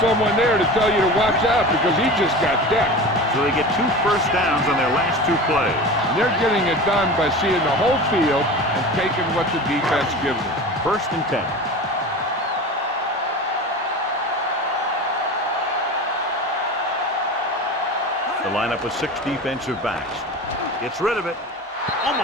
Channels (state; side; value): normal; both; correlation 0.32